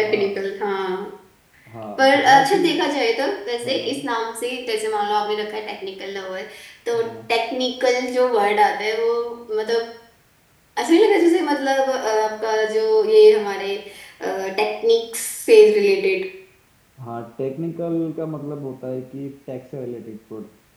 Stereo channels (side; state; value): both; identical; correlation 1.00